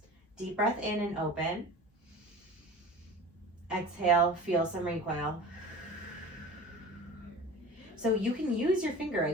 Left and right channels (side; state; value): both; normal; correlation 0.37